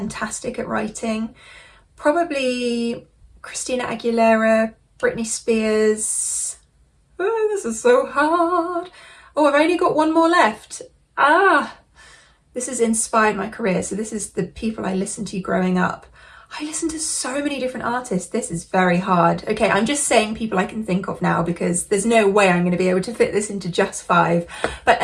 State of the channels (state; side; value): identical; both; correlation 1.00